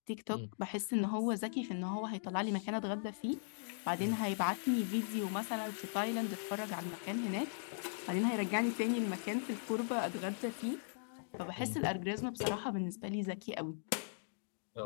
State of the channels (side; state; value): right; silent; digital silence